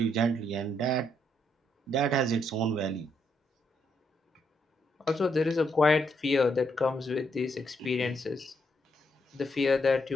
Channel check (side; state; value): both; normal; correlation 0.76